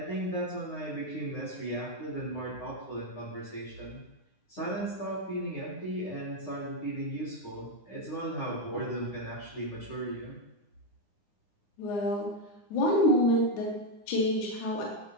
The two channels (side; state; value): right; late; 9.7 ms